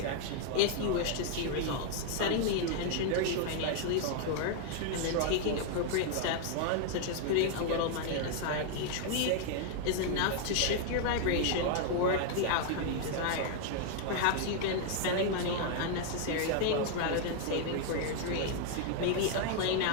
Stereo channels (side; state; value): both; different; correlation 0.00